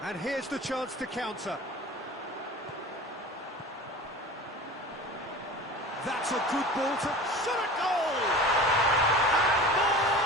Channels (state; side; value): normal; both; correlation 0.37